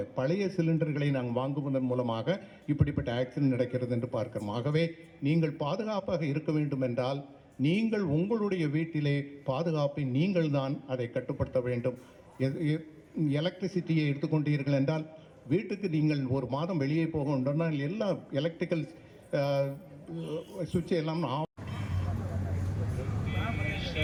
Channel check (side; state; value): both; identical; correlation 1.00